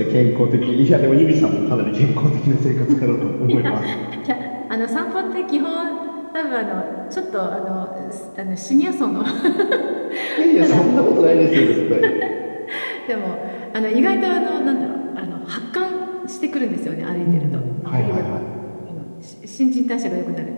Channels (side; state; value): both; inverted; correlation -1.00